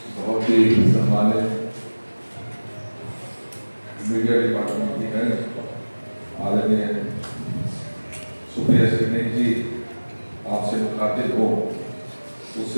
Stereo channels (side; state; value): both; inverted; correlation -1.00